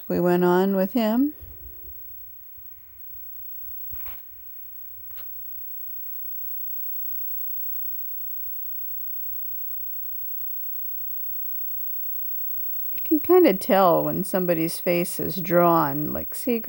we went on with him. You can kind of tell when somebody's face is drawn. Like, see,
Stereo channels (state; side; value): identical; both; correlation 1.00